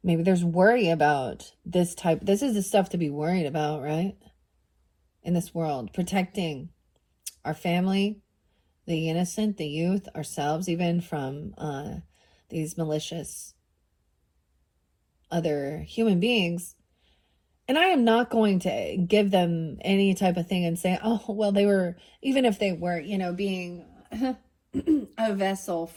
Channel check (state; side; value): identical; both; correlation 1.00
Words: Maybe there's worry about this type. This is the stuff to be worried about, right? In this world. Protecting our family, the innocent, the youth, ourselves, even from these malicious other human beings. And I am not going to give them any type of thing and say, oh, well, they were, even if they were, you know, being a vessel